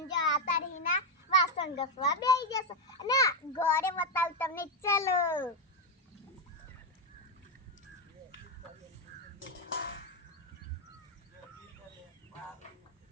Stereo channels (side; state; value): both; normal; correlation 0.05